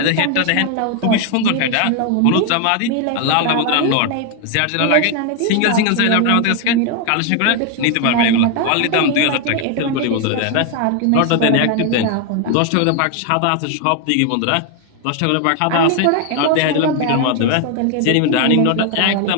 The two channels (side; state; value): both; different; correlation 0.01